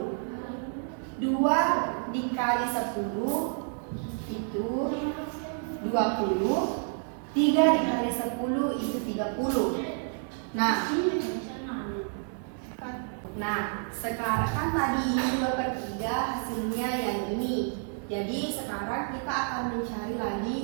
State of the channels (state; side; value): silent; left; 56 dB below the other